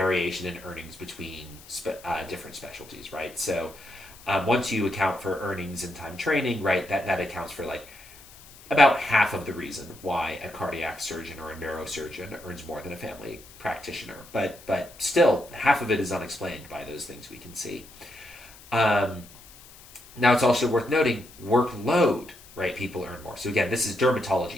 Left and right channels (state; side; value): noise; left; hiss, 21 dB below the sound